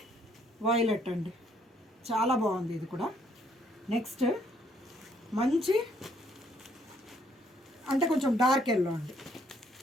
వైలెట్ అండి. చాలా బాగుంది ఇది కూడా. నెక్స్ట్ మంచి అంటే కొంచెం డార్క్ ఎల్లో అండి.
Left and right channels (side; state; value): both; normal; correlation 0.67